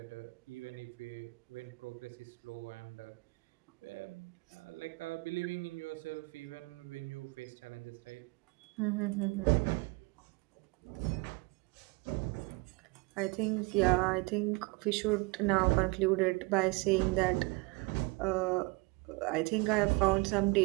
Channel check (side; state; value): left; quieter; 26.8 dB